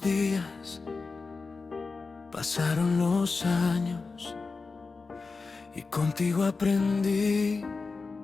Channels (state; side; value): quieter; right; 4.2 dB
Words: pasaron los años, y contigo aprendí